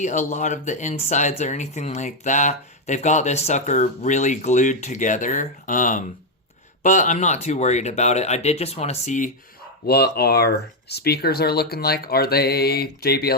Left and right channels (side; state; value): both; normal; correlation 0.03